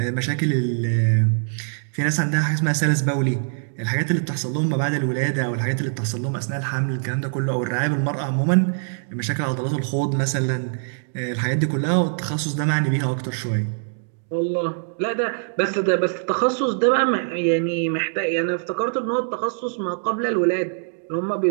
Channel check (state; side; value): silent; left; digital silence